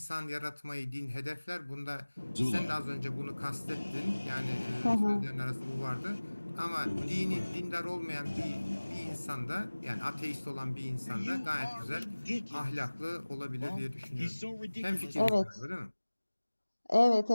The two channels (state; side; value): inverted; both; correlation -1.00